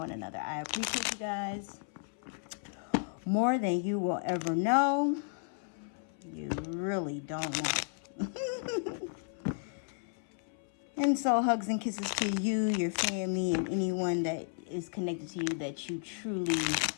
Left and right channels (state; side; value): silent; right; 55 dB below the other